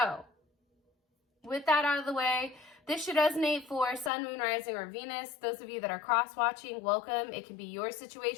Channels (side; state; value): right; drops out; at 4.1 s